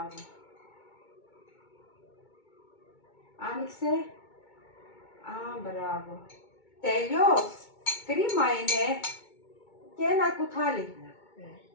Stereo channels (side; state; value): right; late; 2.2 ms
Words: Άνοιξε. Α, μπράβο. Τελειώς. Κρίμα είναι. Και ένα κουτάλι.